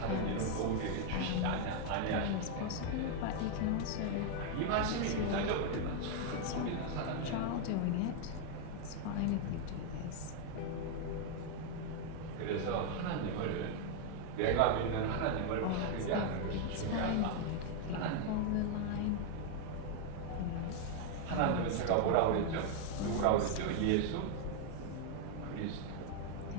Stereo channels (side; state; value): both; different; correlation 0.00